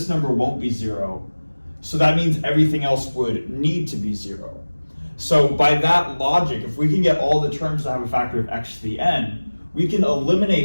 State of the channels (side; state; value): both; inverted; correlation -1.00